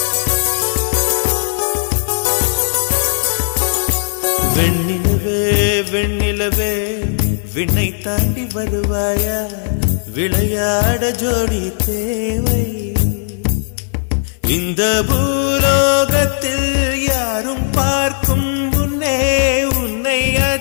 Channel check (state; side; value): silent; right; digital silence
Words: வெண்ணிலவே வெண்ணிலவே விண்ணை தாண்டி வருவாயா, விளையாட ஜோடி தேவை. இந்த பூலோகத்தில் யாரும் பார்க்கும் முன்னே உன்னை